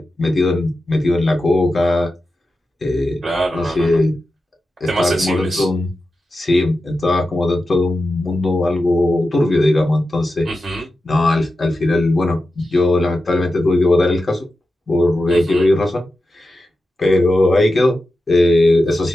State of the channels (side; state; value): both; normal; correlation 0.91